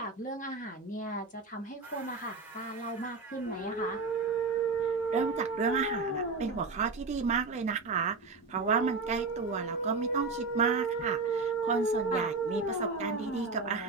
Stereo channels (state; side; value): quieter; left; 4.1 dB